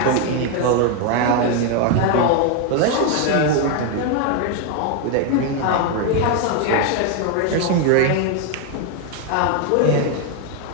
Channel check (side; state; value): both; different; correlation 0.01